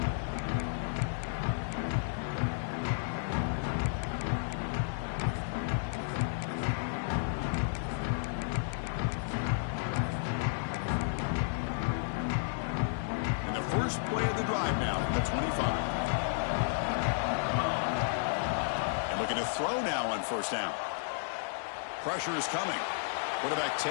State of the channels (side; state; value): right; silent; digital silence